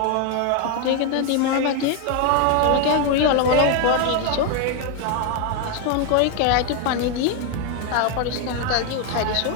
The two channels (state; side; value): different; both; correlation 0.01